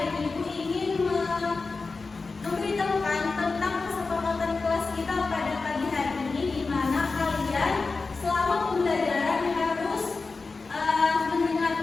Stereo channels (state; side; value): quieter; right; 4.1 dB